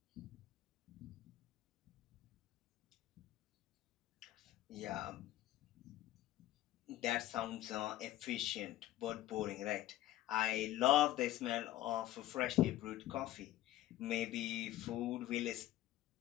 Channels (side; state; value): right; quieter; 14.5 dB